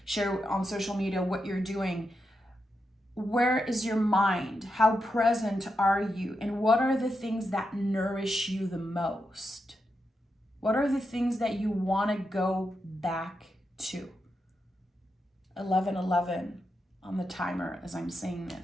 share on social media what you're doing. Where is your mind? How present are you? And what are the things that nourish you the most? What are the things that you want to go back to? 11:11 on the timer as I'm saying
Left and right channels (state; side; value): normal; both; correlation 0.86